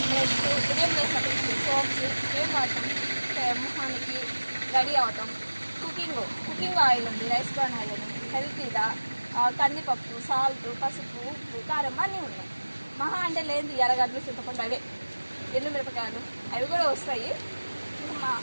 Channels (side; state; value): both; inverted; correlation -1.00